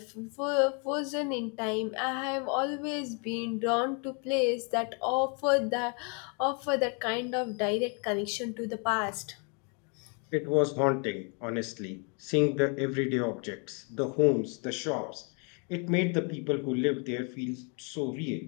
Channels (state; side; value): quieter; right; 36.4 dB